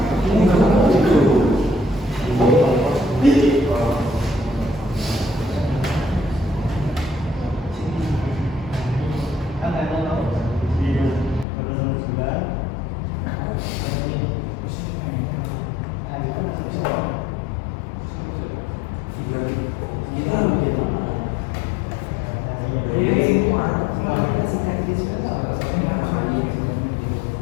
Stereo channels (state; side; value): drops out; right; at 11.5 s